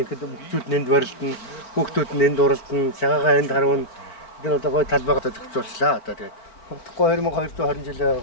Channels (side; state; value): right; late; 4.5 ms